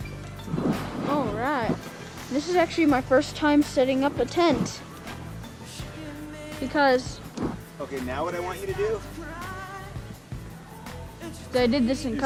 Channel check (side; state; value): both; identical; correlation 1.00